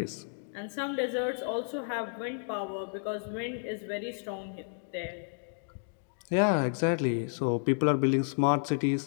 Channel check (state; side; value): silent; right; digital silence